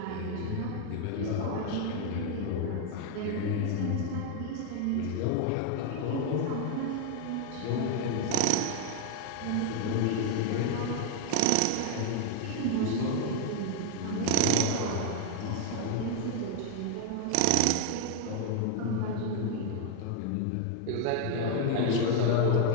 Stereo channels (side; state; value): both; different; correlation 0.00